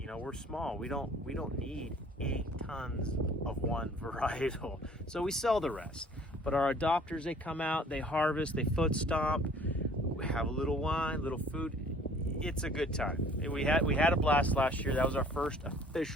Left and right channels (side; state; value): both; normal; correlation 0.53